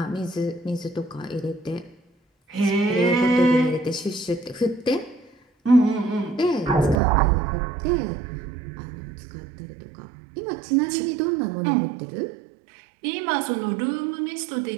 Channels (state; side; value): drops out; left; at 7.0 s